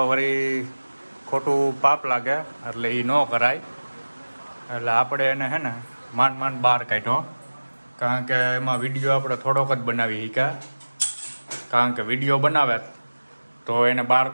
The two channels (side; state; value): both; inverted; correlation -1.00